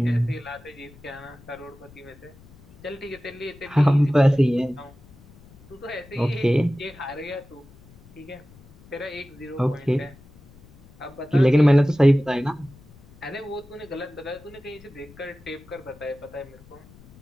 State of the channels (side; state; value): left; noise; rumble, 24 dB below the sound